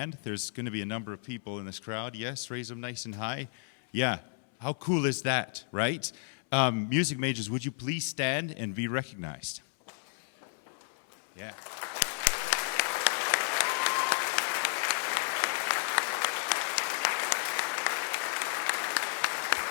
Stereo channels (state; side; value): silent; right; 56 dB below the other